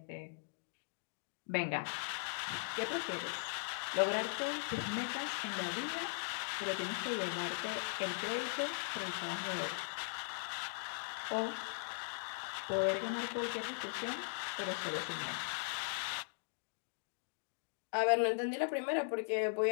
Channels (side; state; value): right; silent; digital silence